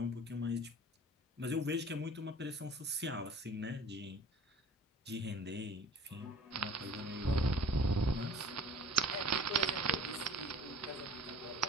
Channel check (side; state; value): both; normal; correlation 0.46